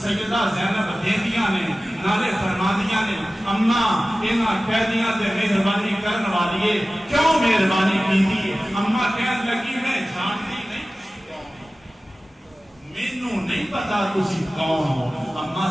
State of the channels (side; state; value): both; normal; correlation 0.96